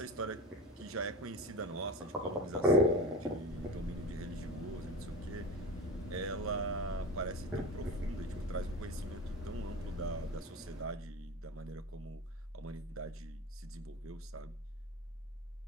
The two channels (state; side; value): normal; both; correlation 0.30